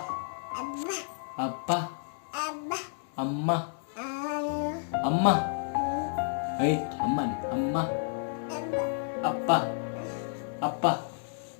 ಅಪ್ಪ ಅಮ್ಮ ಅಮ್ಮ ಐ ಅಮ್ಮ ಅಮ್ಮ ಅಪ್ಪ ಅಪ್ಪ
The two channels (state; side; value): silent; right; digital silence